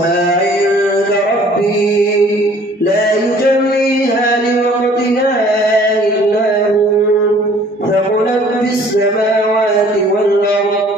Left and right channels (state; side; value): normal; both; correlation 0.54